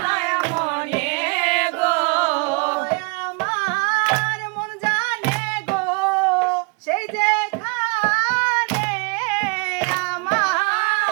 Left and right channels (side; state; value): left; quieter; 32.2 dB